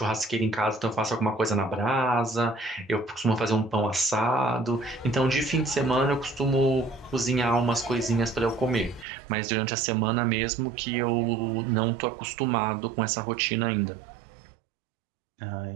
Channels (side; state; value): left; drops out; at 9.1 s